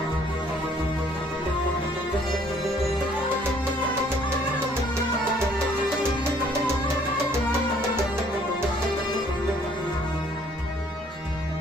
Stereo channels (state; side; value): normal; both; correlation 0.61